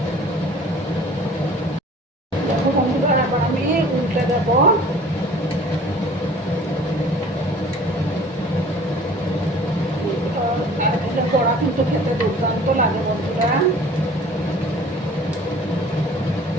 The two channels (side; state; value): both; normal; correlation 0.48